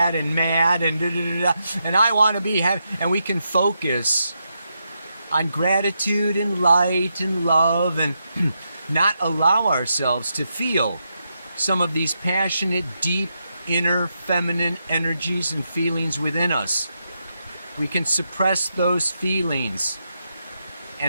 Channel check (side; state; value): both; inverted; correlation -0.83